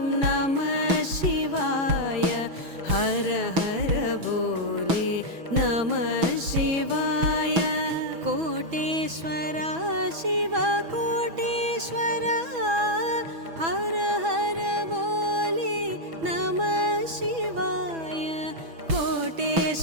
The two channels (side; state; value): left; late; 6.1 ms